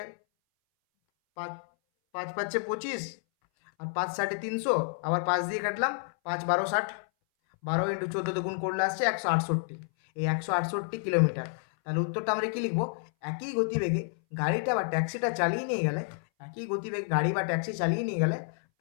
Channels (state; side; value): silent; right; 58 dB below the other